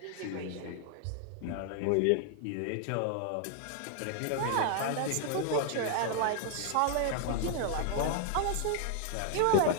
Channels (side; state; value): both; different; correlation 0.00